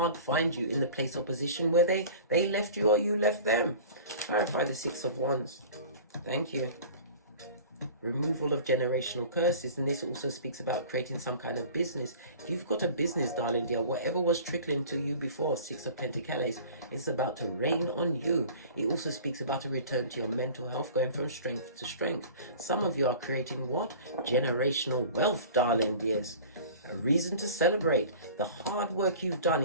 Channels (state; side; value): inverted; both; correlation -0.42